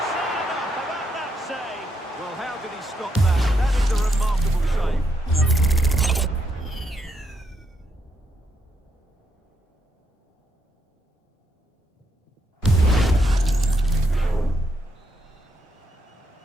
say enough about that save. Well, how did he stop that? That is a remarkable save.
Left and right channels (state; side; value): normal; both; correlation 0.78